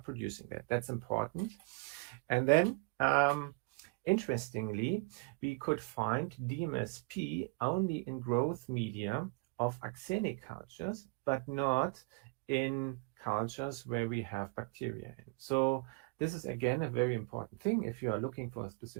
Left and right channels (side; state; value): left; quieter; 29.8 dB